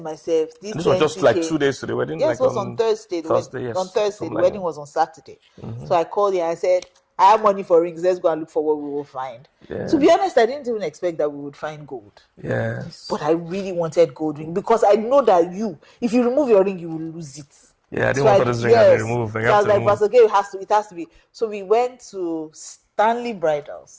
myself, this was just like 2 days to the wedding? Yes, it was on Thursday. Thursday, yes. On Thursday. The wedding was on Saturday. Mm-hmm. So I called him and I said, I have money for rings. Let's go and look for what we will find. Yeah. To be honest, I didn't even expect that we would find gold. Yes. But I really wanted gold ring because I know that if you remove your ring, you will lose it. Yeah, I didn't want this ring to remove. So I was like, Pastor Gay, it has to be. So we went to Stanley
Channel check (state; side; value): identical; both; correlation 1.00